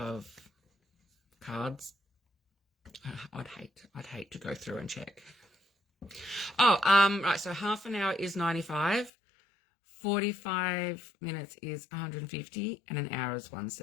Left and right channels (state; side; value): drops out; right; at 9.1 s